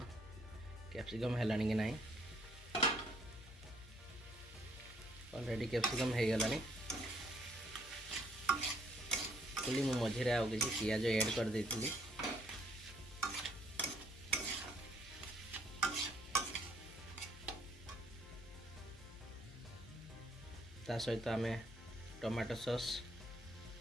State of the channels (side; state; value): left; noise; hum, 17 dB below the sound